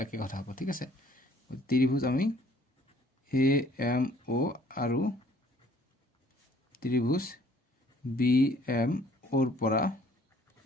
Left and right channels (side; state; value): both; normal; correlation 0.58